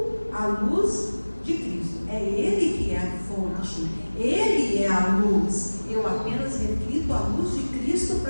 a luz de Cristo. É Ele que é a fonte. Ele é a luz. Eu apenas reflito a luz de Cristo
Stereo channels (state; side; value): inverted; both; correlation -1.00